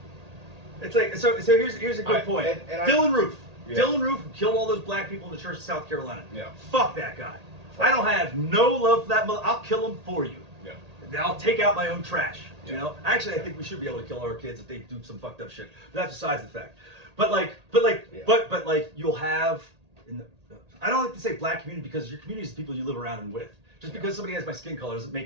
It's like so here's a good point. Dylan Roof. Yeah. Dylan Roof who killed all those black people in the church of South Carolina. Yeah. Fuck that guy. I don't have no love for that mother. I'll kill him for you. Yeah. I'll take out my own trash. You Yeah. know. Actually, I think we should be able to kill our kids if they do some fucked up shit. But that's besides the fact. But you'll have. I don't like to say black community because your community is the people you live around and with. Just because somebody has my skin color doesn't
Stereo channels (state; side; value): late; left; 1.8 ms